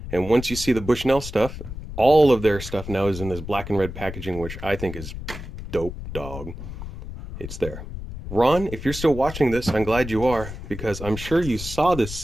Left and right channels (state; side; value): noise; left; rumble, 10 dB below the sound